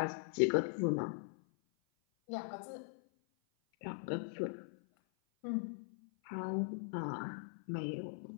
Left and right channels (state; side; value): silent; right; 51 dB below the other